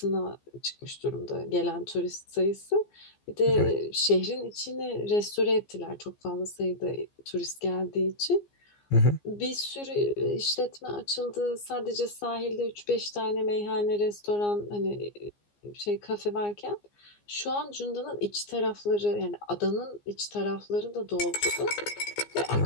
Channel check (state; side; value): late; right; 15 ms